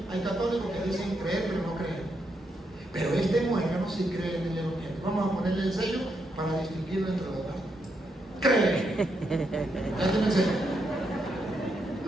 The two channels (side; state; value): both; normal; correlation 0.81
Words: hay católicos que dicen creer pero no creen. Pero este muérgano sí cree en el Evangelio. Vamos a ponerle el sello para distinguirlo entre los demás. Cree. Ya tiene el sello.